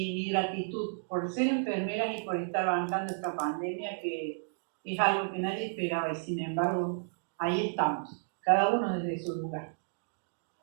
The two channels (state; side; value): silent; left; digital silence